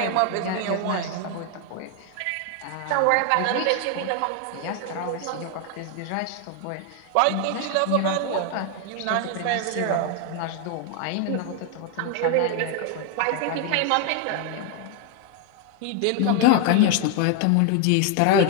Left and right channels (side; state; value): both; different; correlation 0.01